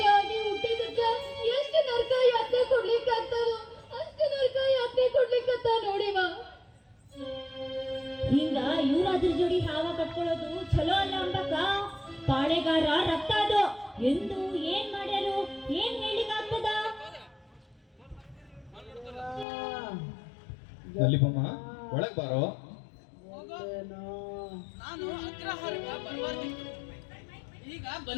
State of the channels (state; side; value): drops out; right; at 19.5 s